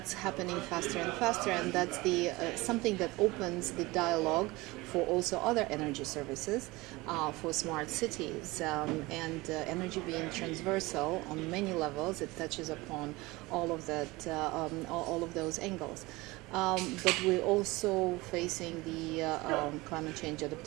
happening faster and faster, and that's the something that opens the dialogue for also other energy services, for smart cities, and energy being transversal on many levels. It touches upon all of that, all of those angles. But we're also facing the climate change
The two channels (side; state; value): left; quieter; 21.8 dB